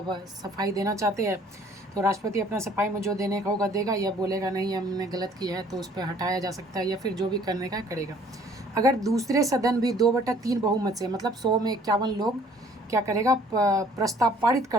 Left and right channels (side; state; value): both; normal; correlation 0.57